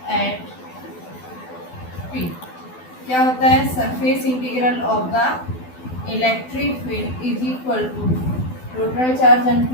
at P, क्या होता है, surface integral of the electric field is equal to total charge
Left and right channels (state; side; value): late; right; 12 ms